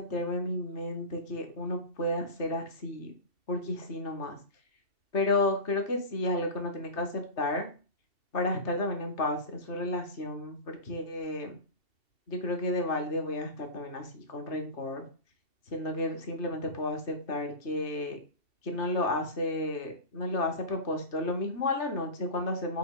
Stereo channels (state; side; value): late; right; 2.7 ms